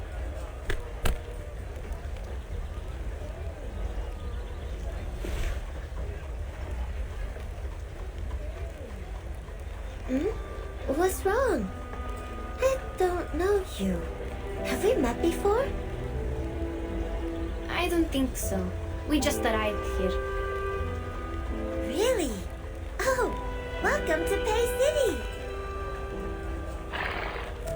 What's wrong? I don't know you. Have we met before? I don't think so. We just arrived here. Really? Oh, welcome to Pay City!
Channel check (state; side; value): identical; both; correlation 1.00